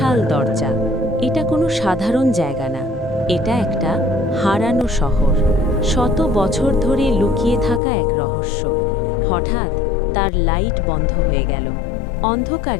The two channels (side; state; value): right; drops out; at 7.8 s